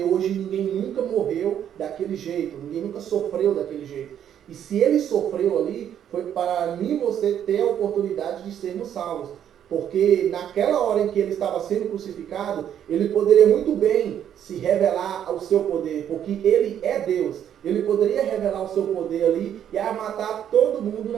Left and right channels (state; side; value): quieter; left; 9.7 dB